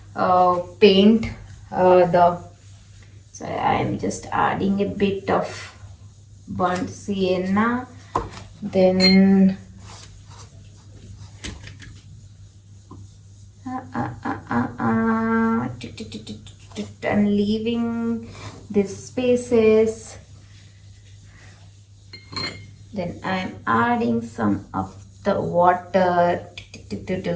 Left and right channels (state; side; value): identical; both; correlation 1.00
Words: paint the, so I am just adding a bit of burnt sienna, then I'm leaving these spaces, then I'm adding some of the water.